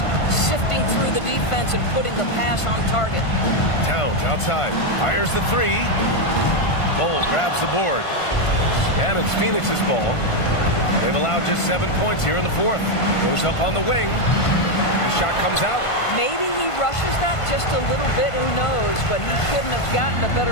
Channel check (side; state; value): right; late; 1.5 ms